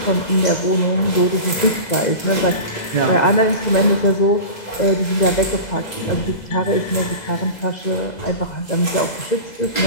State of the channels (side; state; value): right; late; 2.0 ms